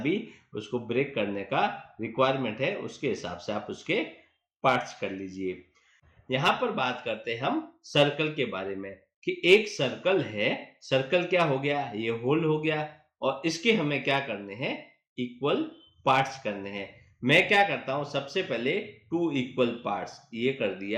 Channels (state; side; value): identical; both; correlation 1.00